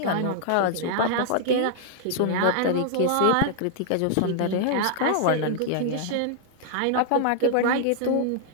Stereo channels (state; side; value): different; both; correlation -0.01